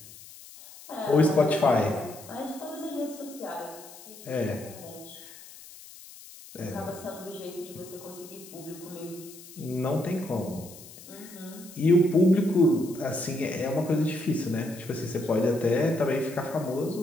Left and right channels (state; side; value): noise; left; hiss, 18 dB below the sound